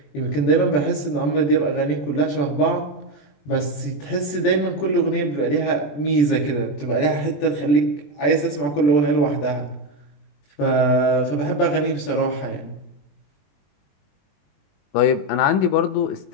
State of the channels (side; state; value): right; late; 20 ms